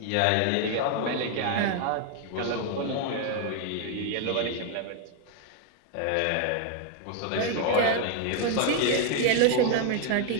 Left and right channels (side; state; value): both; different; correlation 0.00